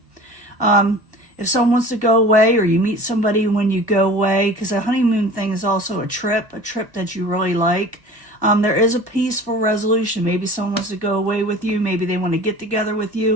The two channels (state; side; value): late; left; 1.1 ms